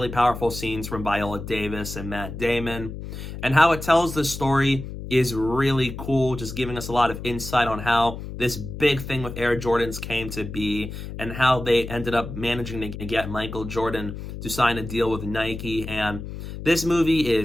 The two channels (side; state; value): left; noise; hum, 9 dB below the sound